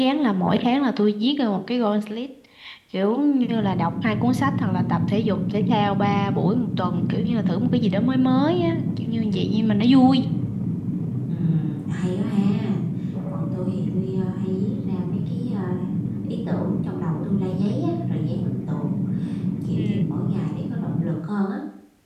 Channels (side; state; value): both; identical; correlation 1.00